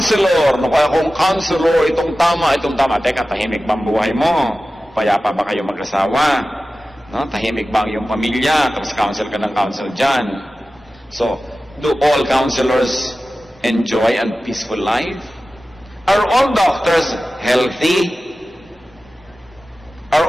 kaya kung counselor, itong tama. Teka, tahimik ba ang buhay mo? Payapa ba kayo mag-asawa? No? Tahimik ba ang iyong pamilya? Tapos counsel ka ng counsel dyan. So, do all counselors enjoy a peaceful life? Are all doctors healthy? Are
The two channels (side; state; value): both; normal; correlation 0.95